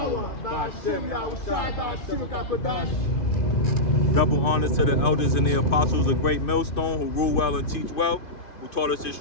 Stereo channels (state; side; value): late; right; 2.5 ms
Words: Ba'ashem, Yahushua, Ba'ashem, Kakadash. Double honors to the elders and the apostles of Great Millstone who rule well and teach well, who taught us this